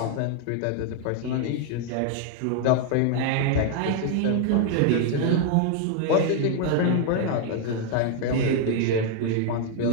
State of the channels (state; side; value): different; both; correlation 0.00